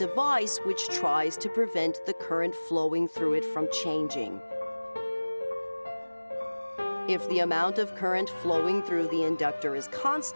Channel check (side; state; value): both; inverted; correlation -1.00